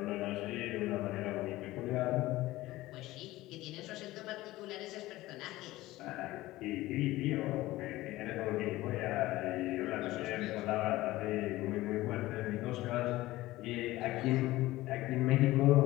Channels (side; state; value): right; quieter; 17.6 dB